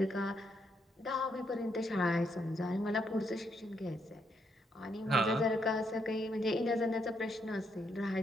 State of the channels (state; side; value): normal; both; correlation 0.76